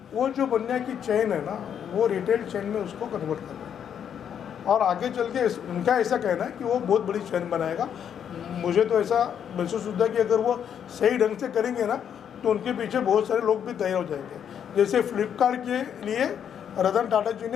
वो जो बनिया की चेन है ना, वो रिटेल चेन में उसको कन्वर्ट कर रहा है। और आगे चल के उनका ऐसा कहना है कि वो बहुत बड़ी चेन बनाएगा। मुझे तो ऐसा महसूस होता है कि अगर वो सही ढंग से करेंगे ना, तो उनके पीछे बहुत सारे लोग भी तैयार हो जाएंगे। जैसे फ्लिपकार्ट के लिए रतन टाटा जी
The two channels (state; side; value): quieter; right; 8.6 dB